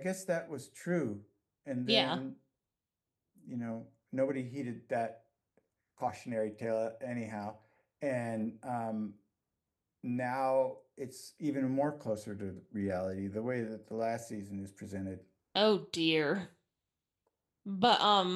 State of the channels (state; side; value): identical; both; correlation 1.00